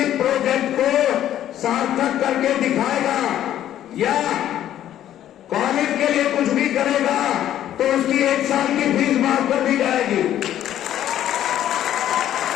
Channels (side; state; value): right; quieter; 11.7 dB